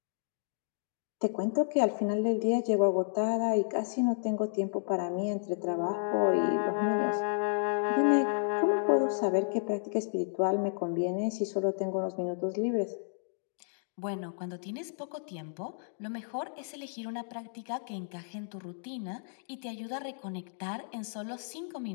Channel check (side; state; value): right; silent; digital silence